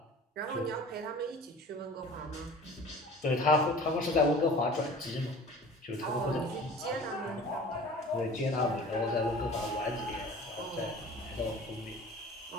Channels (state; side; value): normal; both; correlation 0.43